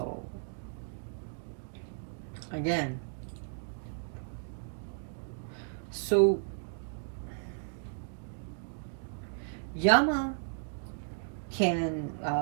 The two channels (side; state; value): left; silent; digital silence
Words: again, Yama can